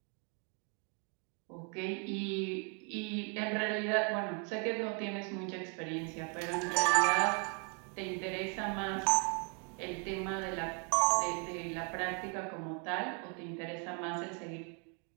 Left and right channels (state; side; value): quieter; left; 37.9 dB